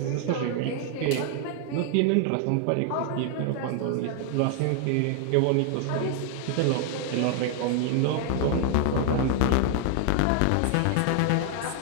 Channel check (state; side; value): different; both; correlation 0.00